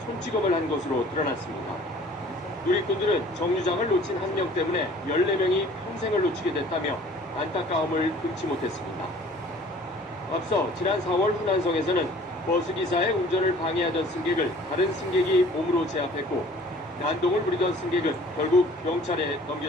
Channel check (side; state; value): both; normal; correlation 0.51